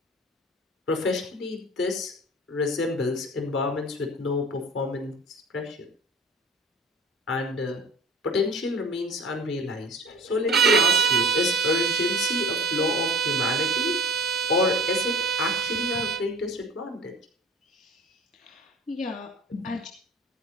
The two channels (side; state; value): both; normal; correlation 0.41